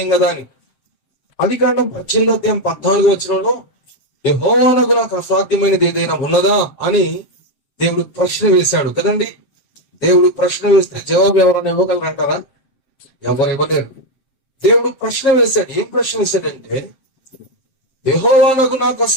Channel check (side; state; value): right; late; 7.6 ms